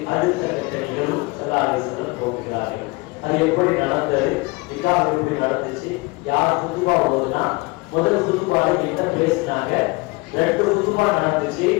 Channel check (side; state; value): right; quieter; 25.0 dB